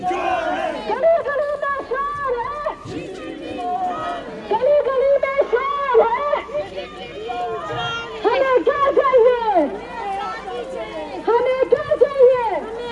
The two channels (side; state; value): both; identical; correlation 1.00